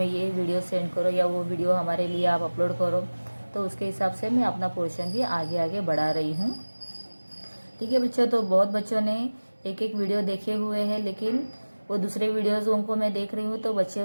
ये वीडियो सेंड करो या वो वीडियो हमारे लिए आप अपलोड करो, तो उसके हिसाब से मैं अपना पोर्शन भी आगे आगे बढ़ा रही हूँ। ठीक है बच्चों, तो बहुत बच्चों ने एक एक वीडियो देखे हुए हैं, लेकिन वो दूसरे वीडियोज़ उनको मैं देख रही हूँ तो बच्चे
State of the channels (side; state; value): both; inverted; correlation -1.00